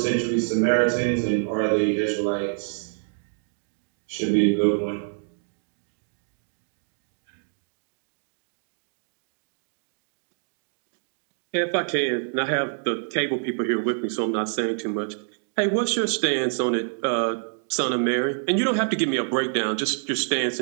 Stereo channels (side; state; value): left; silent; digital silence